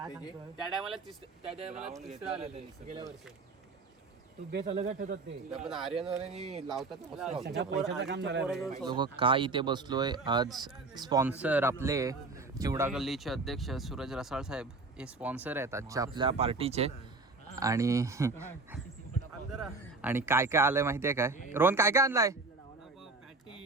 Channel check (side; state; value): left; quieter; 3.5 dB